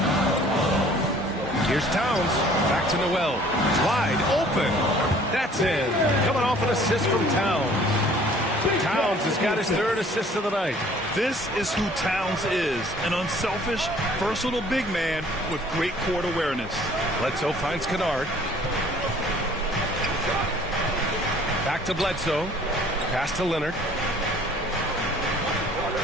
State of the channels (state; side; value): normal; both; correlation 0.54